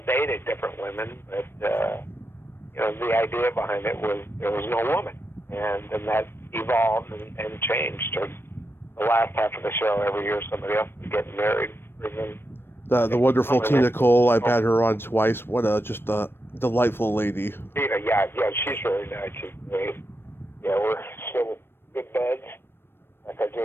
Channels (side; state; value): right; late; 0.11 ms